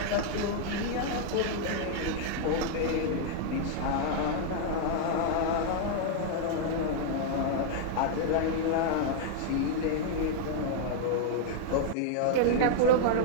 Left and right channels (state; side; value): different; both; correlation -0.01